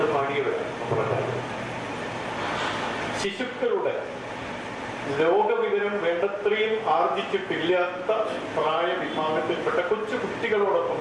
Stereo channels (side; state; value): both; identical; correlation 1.00